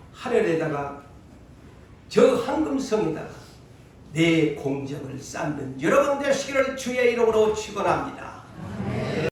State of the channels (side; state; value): both; identical; correlation 1.00